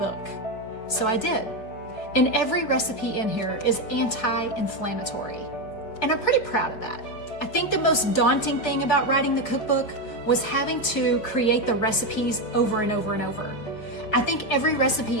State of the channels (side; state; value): right; late; 4.7 ms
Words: So I did. And every recipe in here is anti-inflammatory. And I'm pretty proud of that. I think the most daunting thing about writing the cookbook was having to create the recipes over and over and over. I think every